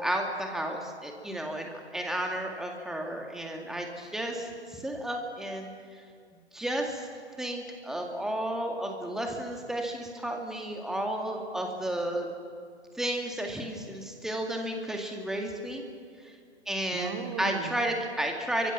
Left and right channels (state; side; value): normal; both; correlation 0.68